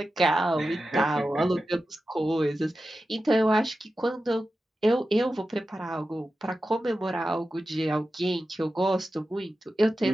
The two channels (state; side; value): normal; both; correlation 0.92